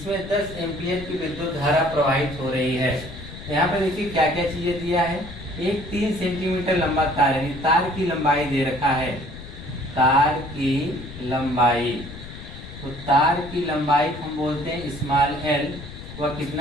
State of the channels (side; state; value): left; noise; rumble, 13 dB below the sound